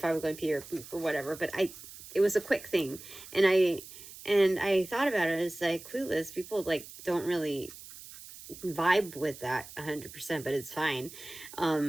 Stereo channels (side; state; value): right; noise; hiss, 16 dB below the sound